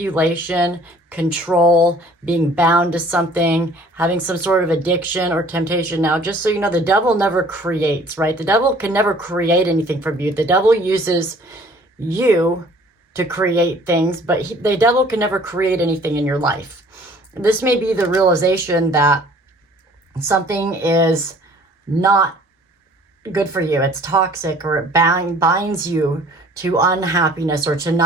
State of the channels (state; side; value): normal; both; correlation 0.53